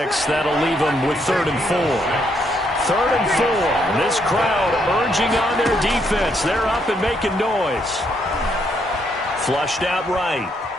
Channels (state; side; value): normal; both; correlation 0.74